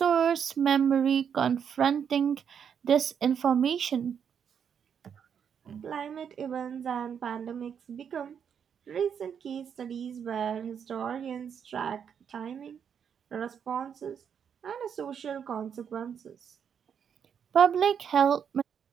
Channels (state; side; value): quieter; left; 7.7 dB